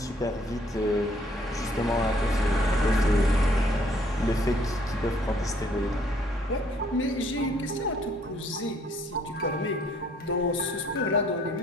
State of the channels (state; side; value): normal; both; correlation 0.63